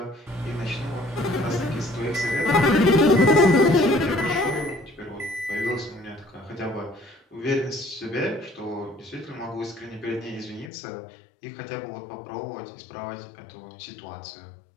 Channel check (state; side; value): drops out; right; at 10.7 s